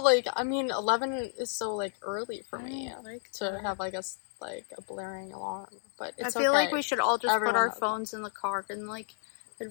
like, I mean, 11 is so like early for me to have like a blaring alarm, but it's I feel like we should all just put our phones in the car and like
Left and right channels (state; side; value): silent; right; 56 dB below the other